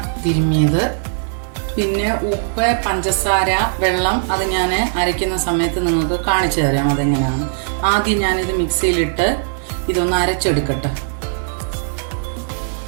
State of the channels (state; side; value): silent; left; digital silence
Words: തിരുമ്മിയത്, പിന്നെ ഉപ്പ്, പഞ്ചസാര, വെള്ളം. അത് ഞാൻ അരയ്ക്കുന്ന സമയത്ത് നിങ്ങൾക്ക് കാണിച്ചു തരാം അതെങ്ങനെയാണ്. ആദ്യം ഞാനിത് മിക്സിയിലിട്ട് ഇതൊന്ന് അരച്ചെടുക്കട്ടെ.